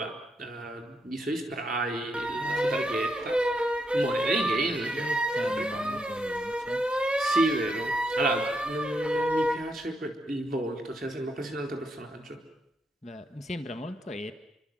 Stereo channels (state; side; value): normal; both; correlation 0.79